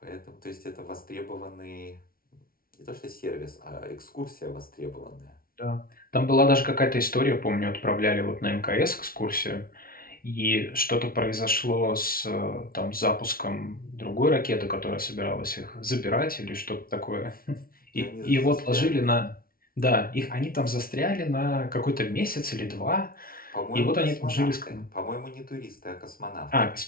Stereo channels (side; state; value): right; late; 0.43 ms